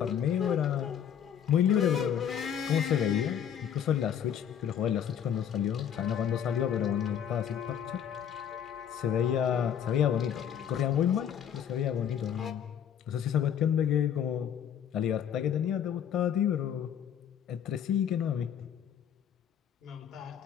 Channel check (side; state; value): right; quieter; 8.9 dB